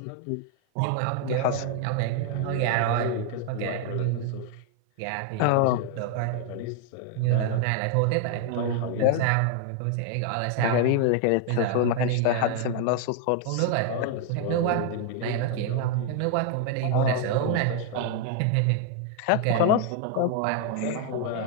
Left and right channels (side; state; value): both; different; correlation 0.00